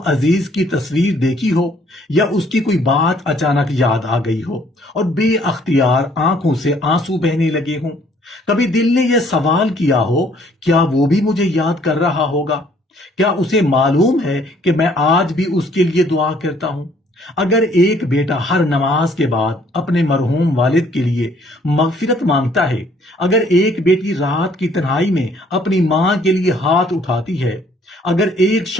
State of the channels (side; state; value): both; normal; correlation 0.61